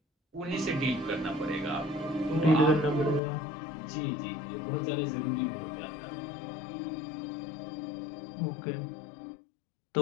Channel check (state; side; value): drops out; right; at 3.2 s